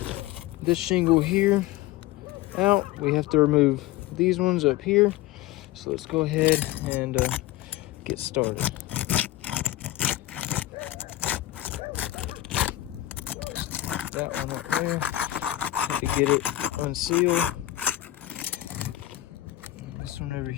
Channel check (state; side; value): quieter; right; 15.3 dB